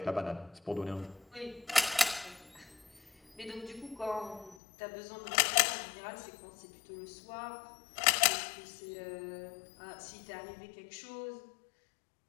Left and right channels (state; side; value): drops out; right; at 4.5 s